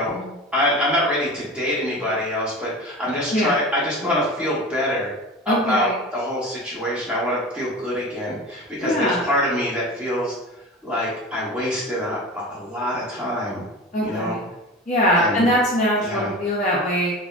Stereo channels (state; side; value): normal; both; correlation 0.32